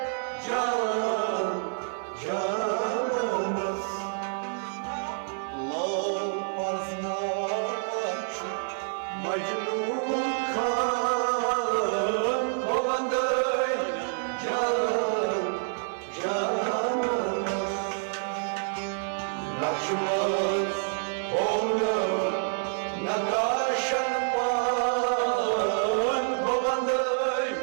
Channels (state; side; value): silent; left; 59 dB below the other